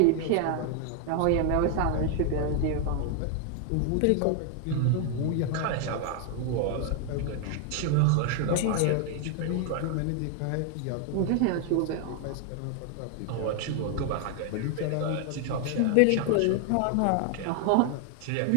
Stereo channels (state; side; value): different; both; correlation 0.00